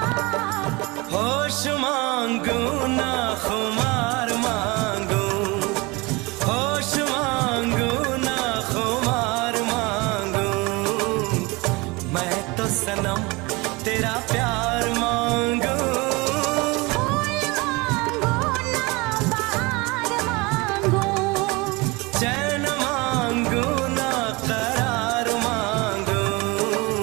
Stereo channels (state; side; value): quieter; left; 25.1 dB